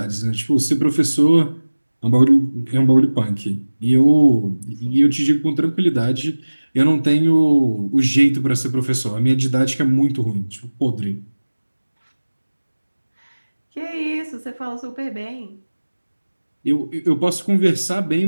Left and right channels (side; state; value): both; inverted; correlation -1.00